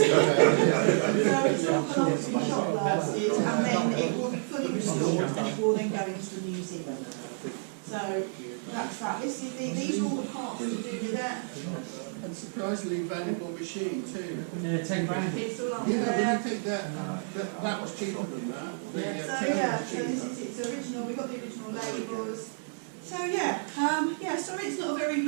So it's all gone off to be shot blasted, and then it will be fully restored. store, and it will then go into the museum. So that's that. These are all the parts to do with that. And surprisingly valuable machine too. Yeah, 10 grand. It's all up Yeah, but there. you think that was cheaper than that? So yeah, so this is its original. We've got the original labels. So yeah, sorry it's not a very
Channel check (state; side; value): silent; left; 58 dB below the other